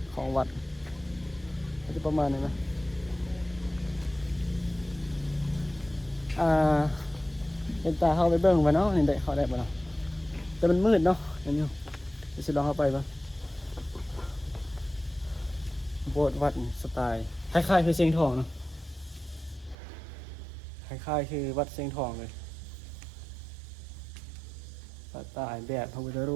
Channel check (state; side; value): drops out; left; at 19.8 s